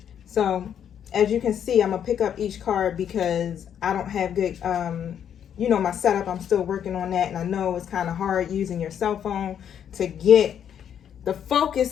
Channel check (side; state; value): right; quieter; 9.0 dB